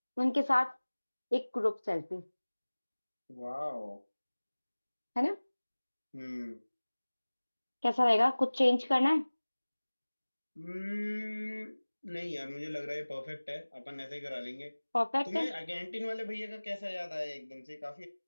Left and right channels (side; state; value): both; inverted; correlation -1.00